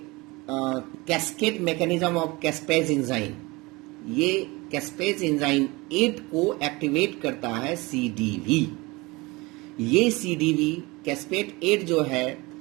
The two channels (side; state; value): left; quieter; 23.6 dB